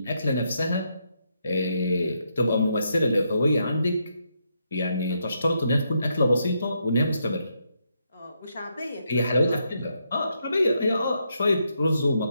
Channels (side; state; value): both; inverted; correlation -0.79